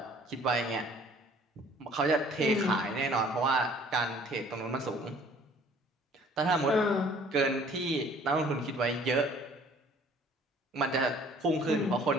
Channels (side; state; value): both; normal; correlation 0.54